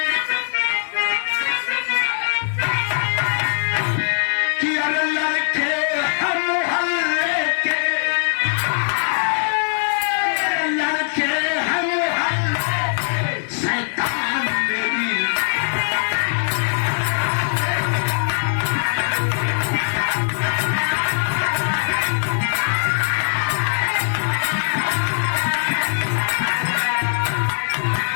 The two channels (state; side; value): silent; right; 65 dB below the other